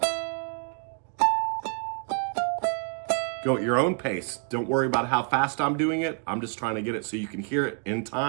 Go at your own pace. Don't worry about how fast I'm doing it. I'm just trying to get it so you can hear it in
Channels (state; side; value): quieter; left; 39.2 dB